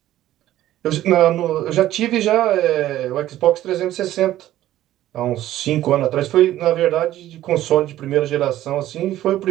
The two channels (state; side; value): quieter; left; 13.7 dB